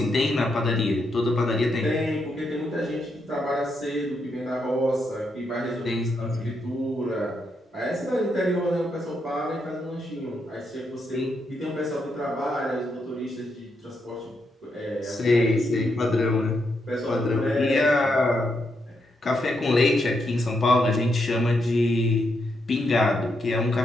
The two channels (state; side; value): normal; both; correlation 0.81